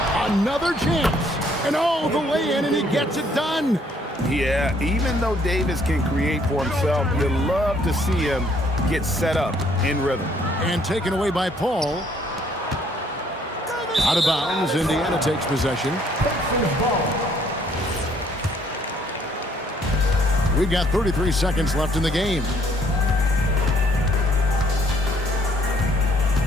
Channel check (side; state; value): both; normal; correlation 0.65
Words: Another chance. And oh, the lay-in, and he gets it done. Yeah, even though Davis can create for himself, you love to see him get set up in rhythm. And taken away by Paul. Out of bounds, Indiana takes possession. We've got 33 seconds left in the game.